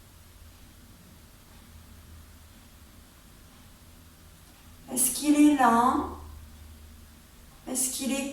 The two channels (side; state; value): both; identical; correlation 1.00